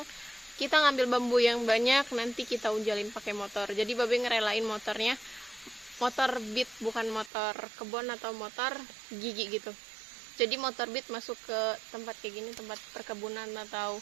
kita ngambil bambu yang banyak, nanti kita unjalin pakai motor. Jadi Babe ngerelain motornya, motor beat, bukan motor kebun atau motor gigi gitu. Jadi motor beat masuk ke tempat kayak gini, tempat perkebunan, atau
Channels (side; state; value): left; drops out; at 7.3 s